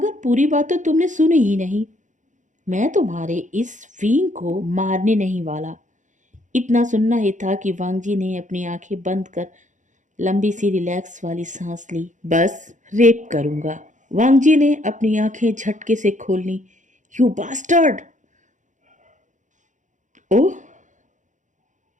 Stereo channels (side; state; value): left; late; 0.36 ms